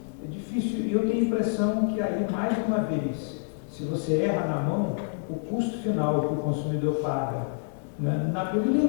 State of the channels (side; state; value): right; silent; digital silence